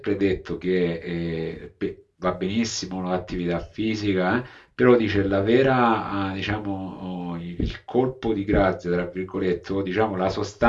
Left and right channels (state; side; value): identical; both; correlation 1.00